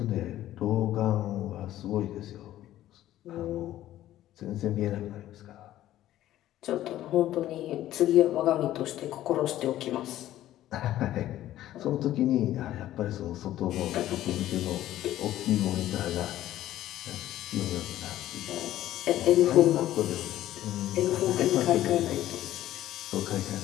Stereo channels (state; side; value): quieter; right; 13.6 dB